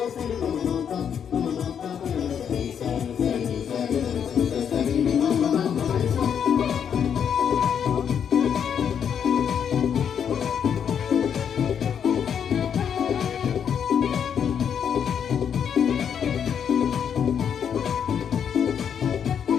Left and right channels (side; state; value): right; quieter; 8.0 dB